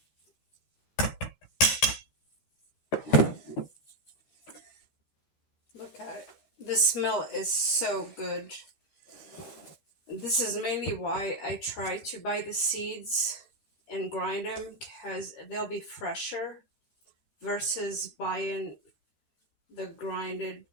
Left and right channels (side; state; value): right; late; 12 ms